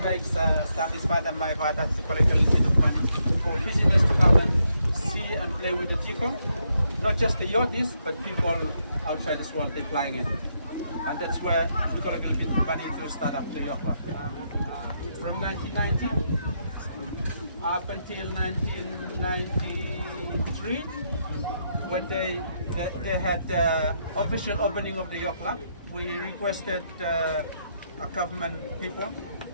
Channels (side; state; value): both; inverted; correlation -0.78